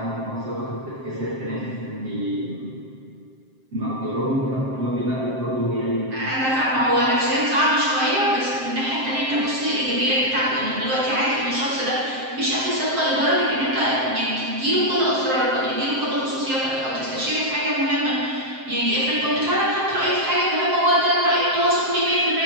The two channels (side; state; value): left; late; 7.6 ms